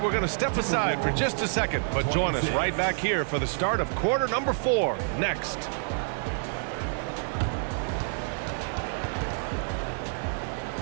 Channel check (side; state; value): left; silent; digital silence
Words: we're going to step aside for just a second, but join us right back here for the start of quarter number 4 next.